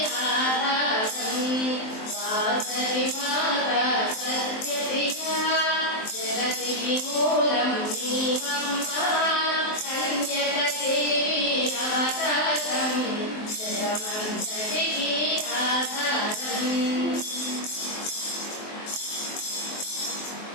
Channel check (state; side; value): late; right; 23 ms